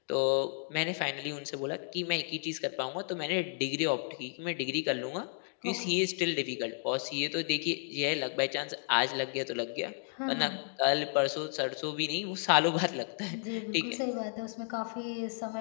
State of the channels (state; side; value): silent; right; 56 dB below the other